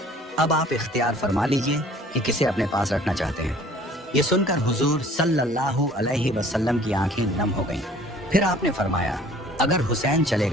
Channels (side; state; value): both; normal; correlation 0.52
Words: अब आप इख्तियार फरमा लीजिए कि किसे अपने पास रखना चाहते हैं। ये सुनकर हुजूर सल्लल्लाहु अलैहि वसल्लम की आंखें नम हो गईं। फिर आपने फरमाया, अगर हुसैन चले